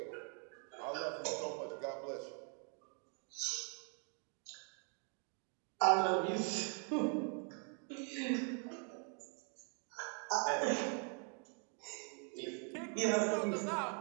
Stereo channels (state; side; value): quieter; left; 39.9 dB